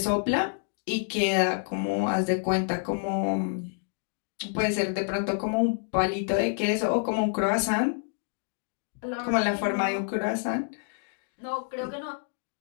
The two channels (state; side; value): silent; right; digital silence